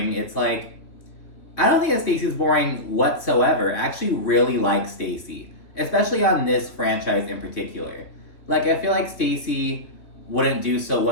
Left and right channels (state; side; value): late; right; 3.0 ms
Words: it's like, I don't think that Stacy's boring whatsoever. I actually really like Stacy, especially on this franchise in particular. Like, I feel like Stacy wouldn't do so